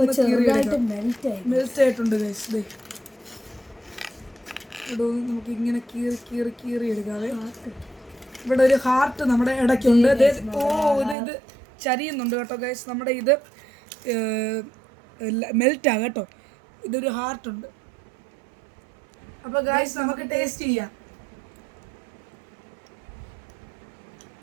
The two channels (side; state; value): left; drops out; at 11.2 s